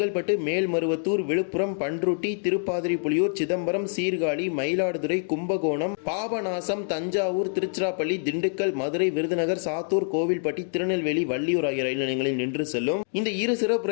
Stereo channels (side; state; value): right; silent; digital silence